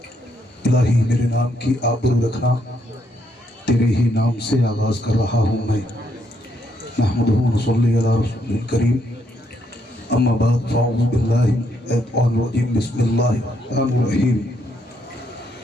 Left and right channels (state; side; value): normal; both; correlation 0.75